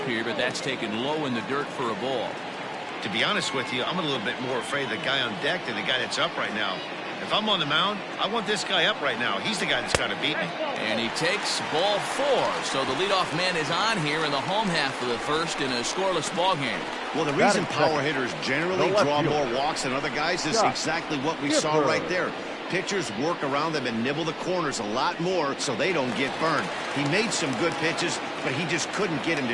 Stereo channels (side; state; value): both; identical; correlation 1.00